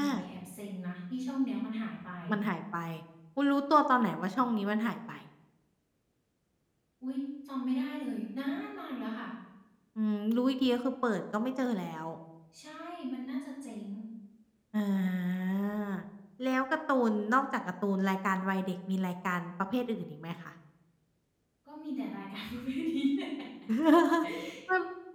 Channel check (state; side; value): identical; both; correlation 1.00